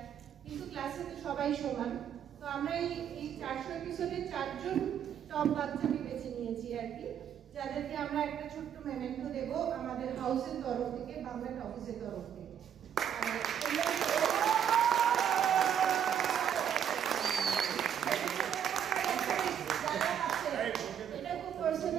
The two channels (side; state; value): left; quieter; 9.0 dB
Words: কিন্তু ক্লাসে তো সবাই সমান। তো আমরা এই 400 এপিসোডে 4 জন টপ বাচ্চাকে বেছে নিয়েছি আর কি, যাদেরকে আমরা একটা ছোট্ট মেমেন্টো দেবো আমাদের হাউসের তরফ থেকে, বাংলা অফিসের তরফ থেকে। এটা খুব